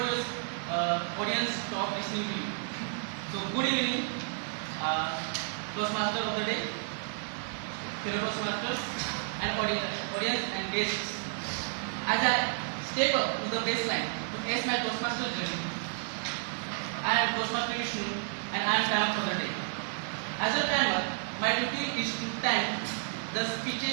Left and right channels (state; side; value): silent; left; 55 dB below the other